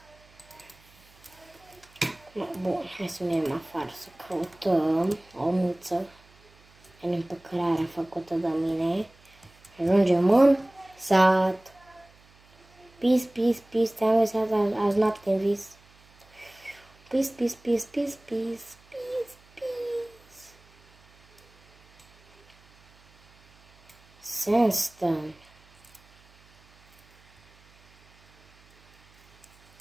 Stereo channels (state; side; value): noise; right; hum, 29 dB below the sound